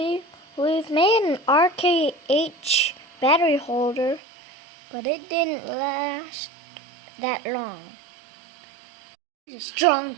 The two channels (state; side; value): drops out; left; at 4.2 s